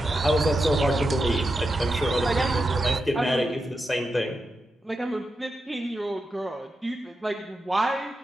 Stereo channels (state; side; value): normal; both; correlation 0.88